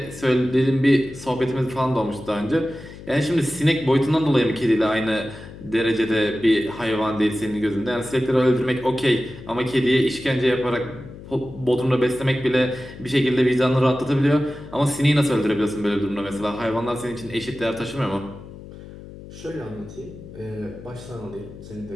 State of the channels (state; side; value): noise; left; hum, 15 dB below the sound